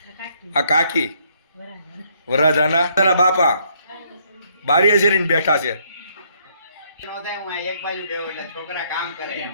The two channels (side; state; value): both; inverted; correlation -0.69